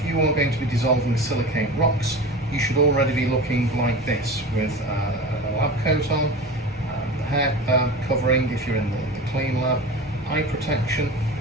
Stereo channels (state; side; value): normal; both; correlation 0.32